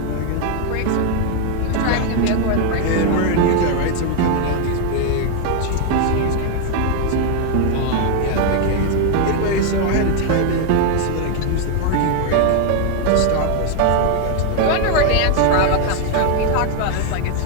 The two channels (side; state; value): both; different; correlation 0.01